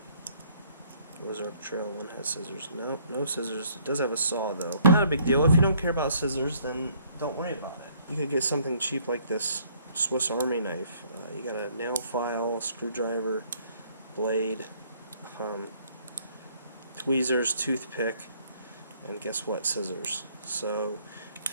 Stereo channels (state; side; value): inverted; both; correlation -0.63